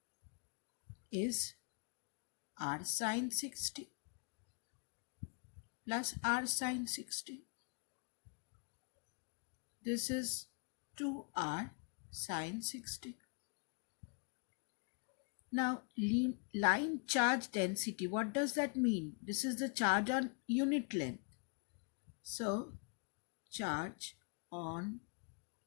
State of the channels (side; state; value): right; quieter; 38.1 dB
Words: is r sine 60 plus r sine 60. This is 2r sine 60. Now, line charge density, what does that mean? This is the charge on unit length. So, charge on